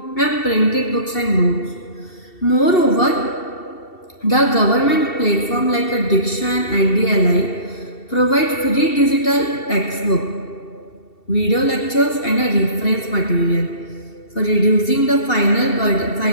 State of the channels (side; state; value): right; late; 2.7 ms